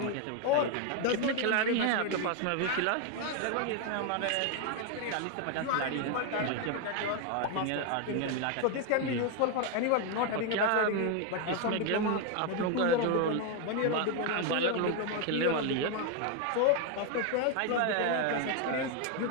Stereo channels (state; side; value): different; both; correlation 0.01